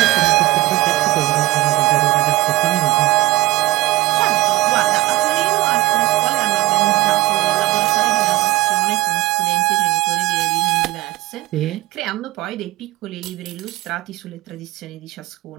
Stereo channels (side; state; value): left; quieter; 18.4 dB